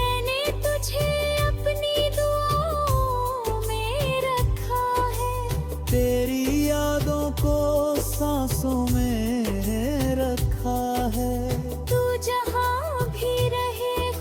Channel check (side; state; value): both; identical; correlation 1.00